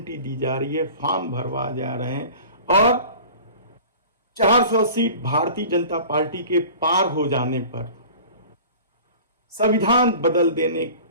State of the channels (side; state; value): both; inverted; correlation -0.41